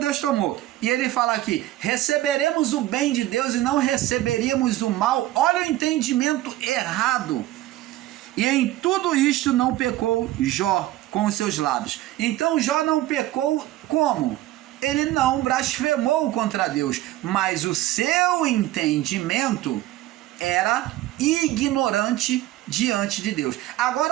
tomou. E ele fala aqui: receberemos o bem de Deus e não receberíamos o mal. Olha o entendimento errado. E em tudo isto não pecou Jó com os seus lábios. Então Jó não pecou como? Ele não blasfemou contra Deus, mas o seu entendimento era ignorante diante de Deus.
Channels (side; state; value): left; quieter; 15.3 dB